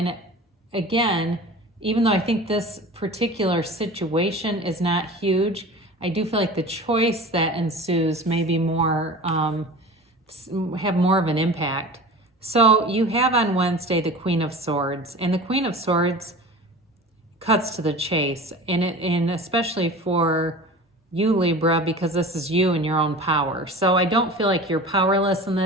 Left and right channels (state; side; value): normal; both; correlation 0.37